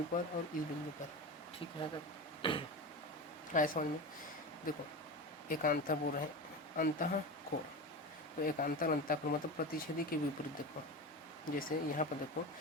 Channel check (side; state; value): both; normal; correlation 0.25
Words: पर और इस बिंदु पर। ठीक है, तब आए समझ में। देखो एकांतर बोल रहे हैं अंतःकोण, तो एकांतर अंतःकोण मतलब प्रतिच्छेदी के विपरीत। देखो जैसे यहाँ पर देखो,